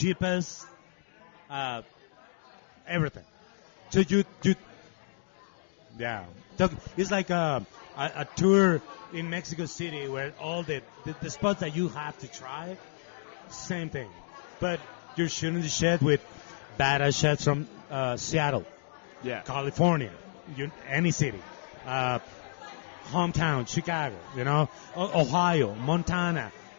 everything. So yeah. It's like a tour in Mexico City where all the spots that you have to try, same thing. But you're shooting the shit with badass chefs from Seattle, California, any city, hometown, Chicago, Ohio, Montana,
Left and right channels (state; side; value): silent; right; digital silence